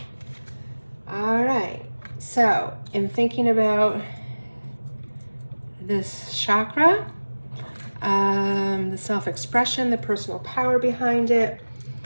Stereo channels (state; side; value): inverted; both; correlation -1.00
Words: All right, so in thinking about this chakra, the self-expression, the personal power behind it,